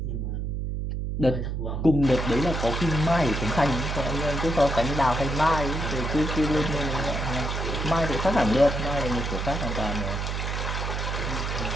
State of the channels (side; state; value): right; noise; hum, 2 dB below the sound